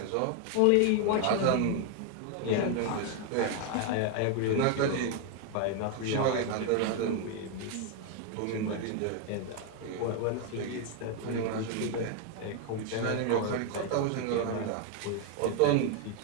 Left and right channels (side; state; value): both; different; correlation 0.00